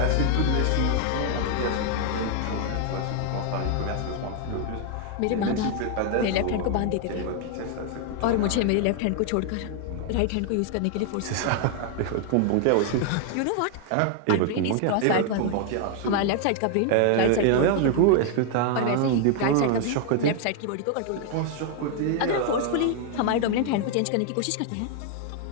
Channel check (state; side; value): different; both; correlation 0.00